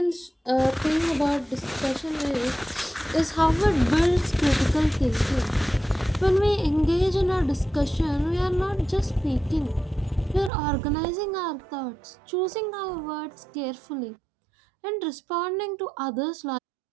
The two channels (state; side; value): drops out; left; at 10.5 s